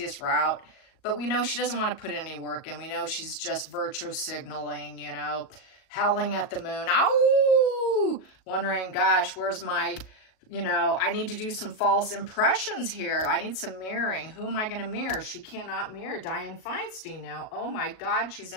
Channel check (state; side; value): late; right; 38 ms